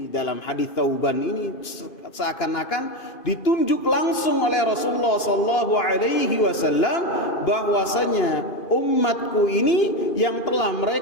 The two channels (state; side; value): late; right; 2.5 ms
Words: dalam hadis Thauban ini seakan-akan ditunjuk langsung oleh Rasulullah sallallahu alaihi wasallam bahwasanya umatku ini yang telah